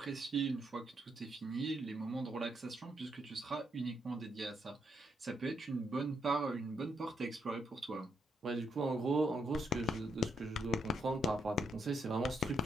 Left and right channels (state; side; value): normal; both; correlation 0.78